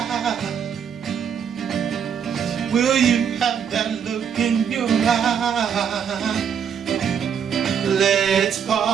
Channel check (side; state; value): left; quieter; 7.6 dB